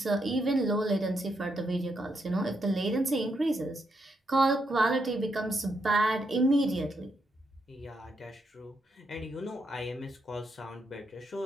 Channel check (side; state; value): both; normal; correlation 0.80